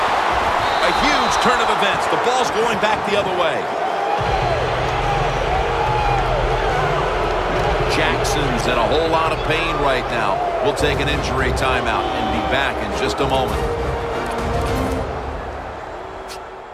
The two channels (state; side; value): identical; both; correlation 1.00